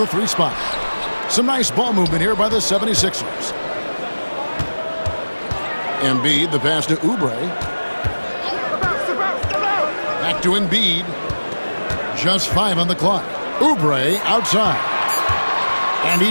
3 spot. Some nice ball movement here by the 76ers. Embiid, the pass to Oubre. Back to Embiid. Just 5 on the clock. Oubre outside. And he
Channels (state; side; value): inverted; both; correlation -1.00